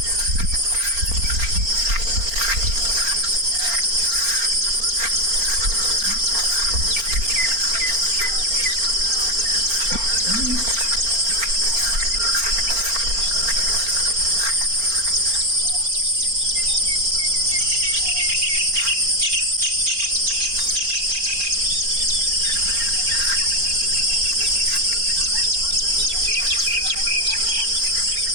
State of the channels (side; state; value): left; late; 4.4 ms